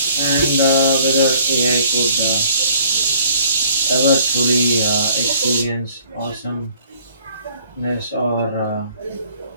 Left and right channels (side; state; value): both; inverted; correlation -0.58